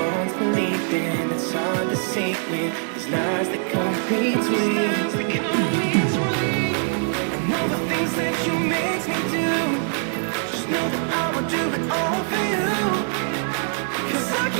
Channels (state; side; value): silent; left; 56 dB below the other